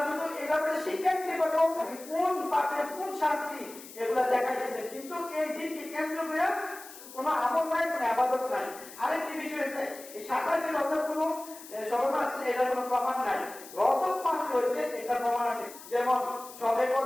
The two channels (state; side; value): noise; left; hiss, 16 dB below the sound